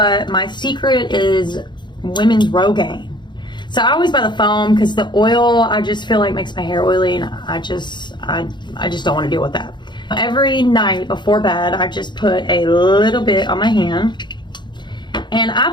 my secret is women's Rogaine. So I always buy the foam, because the oil I just feel like makes my hair oily, and I just don't want to deal with that. Every night before bed, I just put a little bit on my hand. And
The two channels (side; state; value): right; late; 0.22 ms